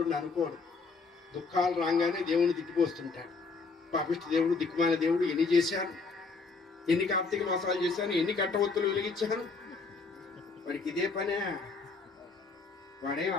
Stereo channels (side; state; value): right; quieter; 4.3 dB